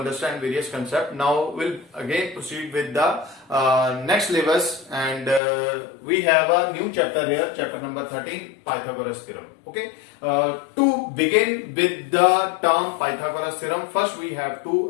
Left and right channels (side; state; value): right; drops out; at 5.4 s